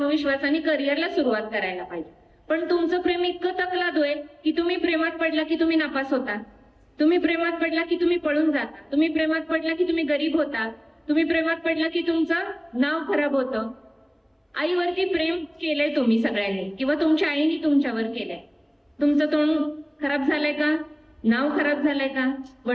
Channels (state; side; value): identical; both; correlation 1.00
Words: करिअरला सुरुवात करायला पाहिजे. पण तुमचं प्रेम इतकं तकलादू आहे की तुम्ही प्रेमात पडला की तुम्ही नापास होता, तुम्ही प्रेमात पडला की तुम्ही पळून जाता, तुम्ही प्रेमात पडला की तुम्ही गरीब होता, तुम्ही प्रेमात पडला की तुमचं नाव खराब होतं. आईवरती प्रेम केलंय तुम्ही सगळ्यांनी किंवा तुमच्या आईने तुमच्यावर केलंय. तुमचं तोंड खराब झालंय का? नाव खराब झालंय का?